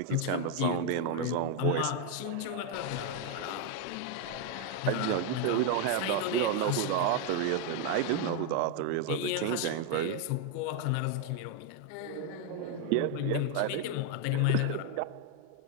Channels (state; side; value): different; both; correlation 0.01